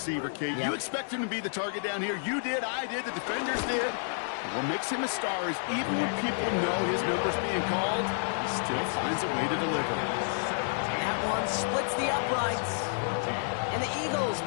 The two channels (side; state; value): right; silent; digital silence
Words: Kate. Yep. You expect him to be the target down here. You did, I did, the defenders did. What makes him a star is even when people know his number's being called, he still finds a way to deliver. That one splits the uprights. And the Eagles